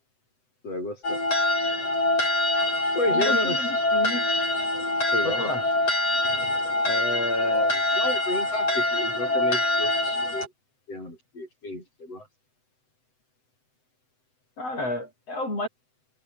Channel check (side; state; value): right; late; 7.9 ms